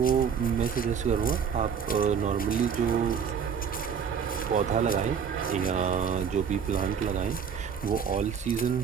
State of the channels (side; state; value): left; quieter; 7.1 dB